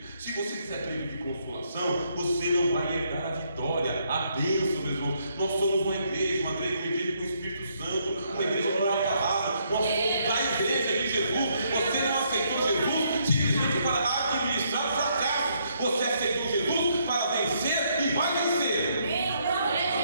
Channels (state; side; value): inverted; both; correlation -0.73